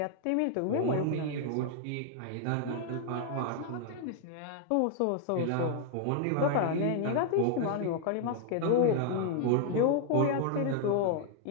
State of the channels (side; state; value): both; different; correlation 0.00